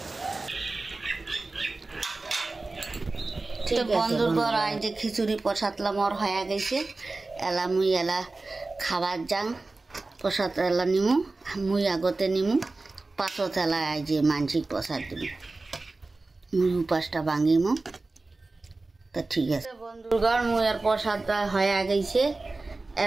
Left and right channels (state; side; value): quieter; left; 3.4 dB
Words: বন্ধুগণ আজ যে খিচুড়ি প্রসাদলাম ওর হয়ে গেছে এলা মুই এলা খাবার যাং প্রসাদ এলা নিমু মুই আগতে নিমু পাছত এলা আজ যে মানসিক প্রসাদ দিব মুই উপাসটা ভাঙিমু তা ঠিক আছে বন্ধুগণ মুই আর প্রসাদটা হয়ে গেছে